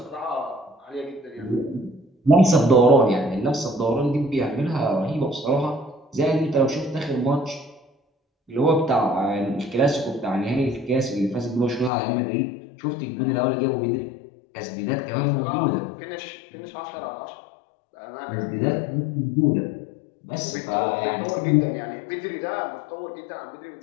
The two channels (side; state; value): right; drops out; at 11.9 s